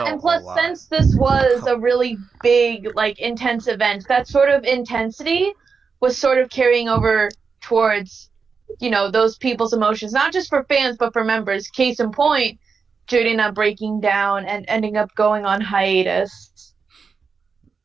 and a plus, lot. since this was a really big, like, intense event, that sort of intensity was sort of carrying over towards, those people's emotions, not just for fans, but for members. Case in point, Jurina breaking down and ending up going on hiatus.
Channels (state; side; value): quieter; left; 5.2 dB